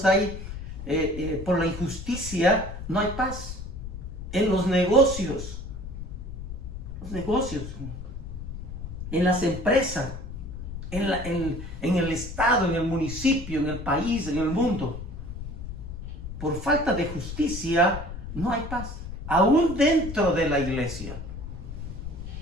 hay por la injusticia no hay paz. En los negocios, en las empresas, en el estado, en el municipio, en el país, en el mundo, por falta de justicia no hay paz. Aún dentro de la iglesia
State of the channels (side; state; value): left; noise; rumble, 8 dB below the sound